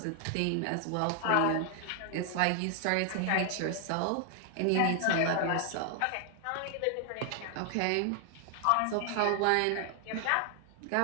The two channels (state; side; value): different; both; correlation 0.00